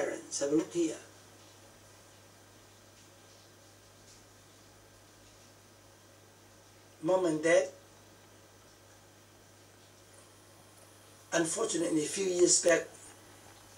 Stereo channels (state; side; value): identical; both; correlation 1.00